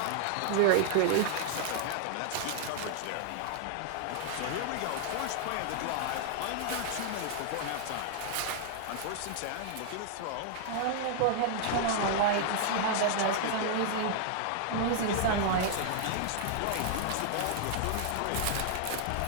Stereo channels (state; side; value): different; both; correlation -0.01